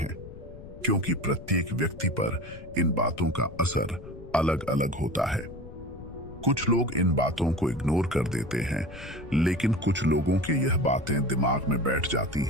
क्योंकि प्रत्येक व्यक्ति पर इन बातों का असर अलग अलग होता है। कुछ लोग इन बातों को इग्नोर कर देते हैं, लेकिन कुछ लोगों के यह बातें दिमाग में बैठ जाती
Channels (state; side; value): noise; left; rumble, 15 dB below the sound